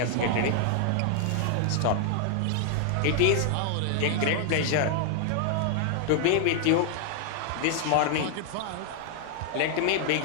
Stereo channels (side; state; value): both; different; correlation 0.00